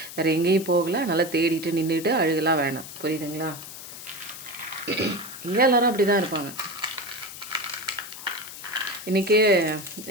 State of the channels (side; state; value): left; noise; hiss, 12 dB below the sound